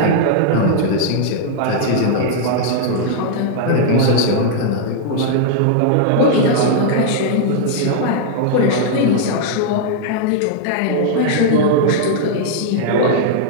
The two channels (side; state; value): both; different; correlation -0.01